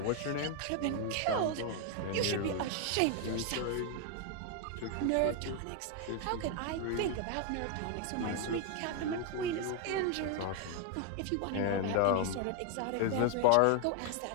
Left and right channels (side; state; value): both; different; correlation 0.01